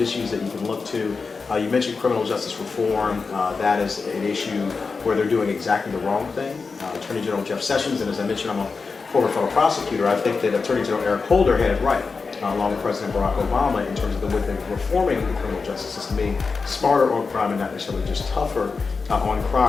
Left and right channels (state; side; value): quieter; right; 4.6 dB